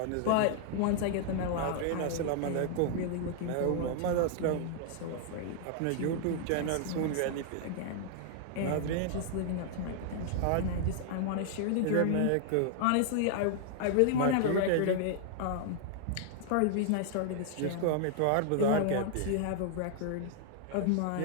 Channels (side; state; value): both; different; correlation -0.01